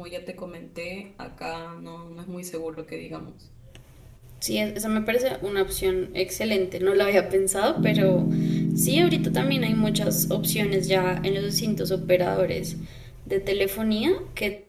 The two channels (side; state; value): both; identical; correlation 1.00